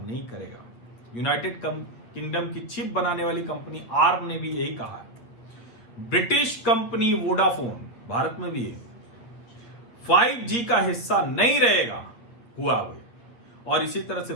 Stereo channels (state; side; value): late; right; 8.5 ms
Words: करेगा। यूनाइटेड किंगडम की चिप बनाने वाली कंपनी आर्म ने भी यही कहा है। ब्रिटिश कंपनी वोडाफोन, भारत में भी है, 5G का हिस्सा नहीं रहेगा हुआवे। और इसी तरह से